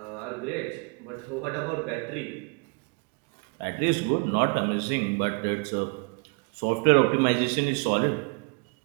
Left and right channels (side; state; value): left; quieter; 33.5 dB